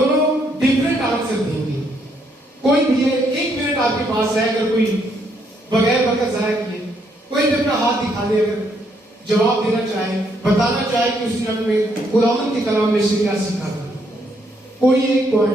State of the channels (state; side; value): normal; both; correlation 0.72